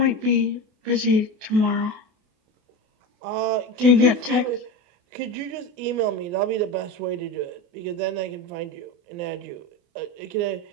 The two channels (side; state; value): left; late; 28 ms